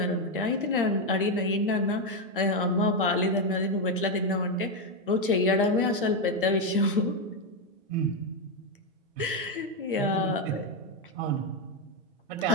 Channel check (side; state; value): both; normal; correlation 0.05